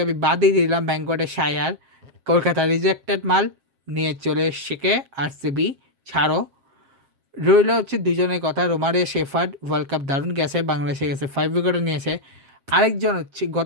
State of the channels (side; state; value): left; late; 7.5 ms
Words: আমি বাদই দিলাম, ব্যাঙ্কটের শায়ার, কলকাতা রিজেক্টেড মাল নিয়ে চলে শেখে আরসিবি ছাড়ো। রইল হচ্ছে দুজনের কথা, রোমারে শেফার্ড ওয়ার্ল্ড কাপ দারুণ গেছে, বাংলাদেশে গেছে 5 উইকেটও নিয়েছে। আরেকজন হচ্ছে